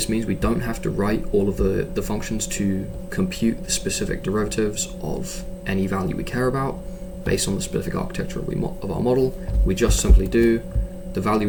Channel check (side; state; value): both; identical; correlation 1.00